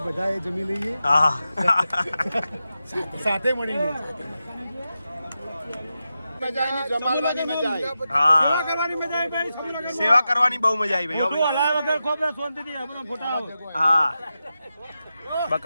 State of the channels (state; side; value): inverted; both; correlation -0.91